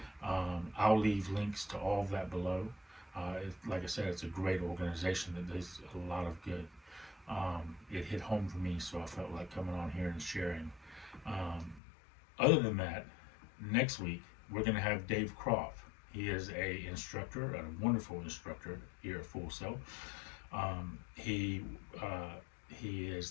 I'll leave links to all of that below. Like I said, it's a great organization that does a lot of good. It hit home for me, so I felt like coming on here and sharing. Other than that, next week we're going to have Dave Croft. He is a instructor, a wonderful instructor here at Full Sail. He is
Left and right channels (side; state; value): right; drops out; at 11.8 s